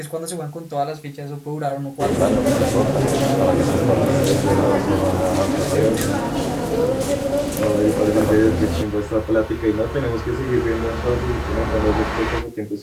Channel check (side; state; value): both; identical; correlation 1.00